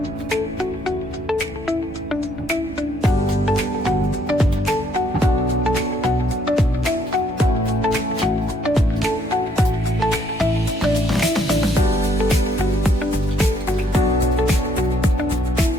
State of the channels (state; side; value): normal; both; correlation 0.67